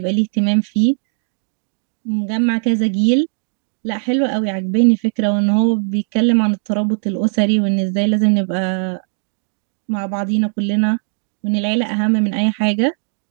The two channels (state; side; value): silent; left; digital silence